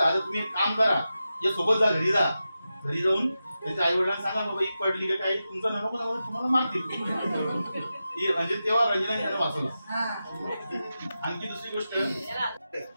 आता तुम्ही एक काम करा, या सोबत जा, घरी जा. घरी जाऊन त्यांच्या आई वडिलांना सांगा बाबा एक पडली का काही तुमचा नको तुम्हाला मारतील. म्हणजे तेव्हा रंजनाने त्यांना वाचवला. आणखी दुसरी गोष्ट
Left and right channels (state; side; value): inverted; both; correlation -0.91